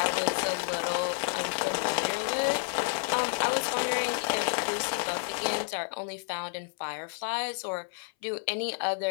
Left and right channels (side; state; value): right; silent; 58 dB below the other